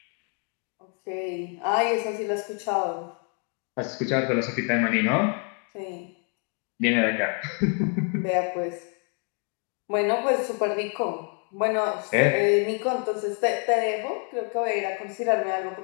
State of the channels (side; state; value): right; quieter; 38.2 dB